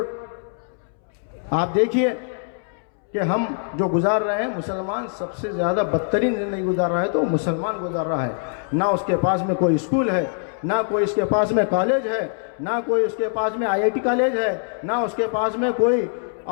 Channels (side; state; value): right; silent; 63 dB below the other